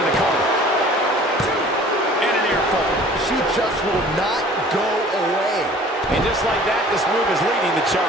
the cover. And an earful. She just will not go away. And just like that, this move is leading the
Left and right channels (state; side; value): normal; both; correlation 0.49